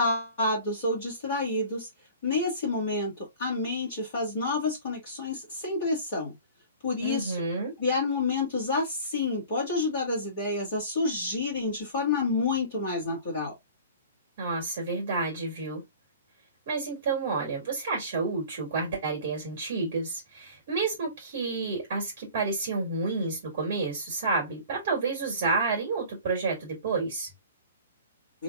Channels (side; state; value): both; inverted; correlation -0.43